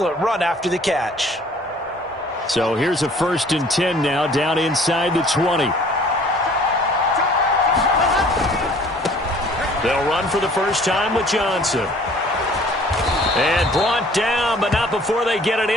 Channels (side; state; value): both; normal; correlation 0.53